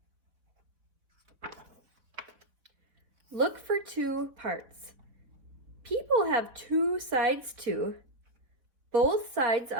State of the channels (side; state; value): left; late; 3.9 ms